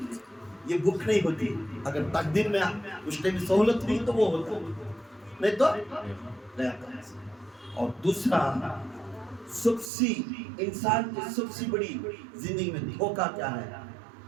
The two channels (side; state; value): left; drops out; at 9.9 s